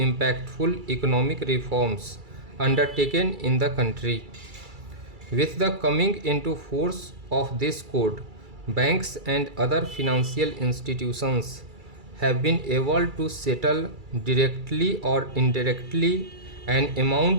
economic reforms undertaken in the country. With the coming into force of this code, banks and other financial institutions have been able to settle directly or indirectly an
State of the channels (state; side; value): late; left; 2.3 ms